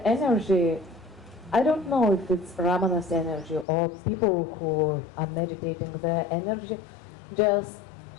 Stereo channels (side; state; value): right; drops out; at 3.7 s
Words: energy, I don't know if it's Ramana's energy or people who are meditating, their energy just